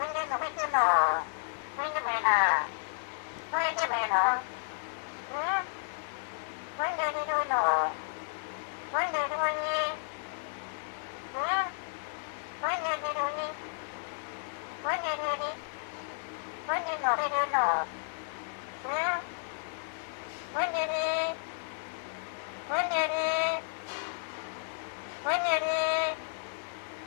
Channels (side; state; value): right; silent; digital silence